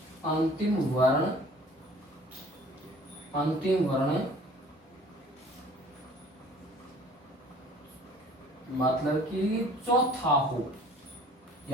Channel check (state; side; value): normal; both; correlation 0.50